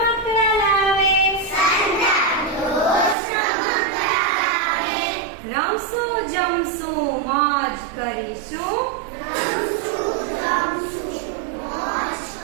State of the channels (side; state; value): left; drops out; at 3.2 s